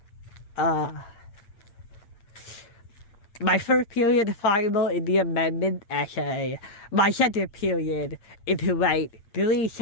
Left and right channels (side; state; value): right; late; 8.8 ms